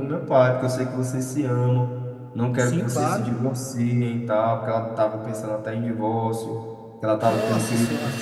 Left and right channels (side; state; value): both; identical; correlation 1.00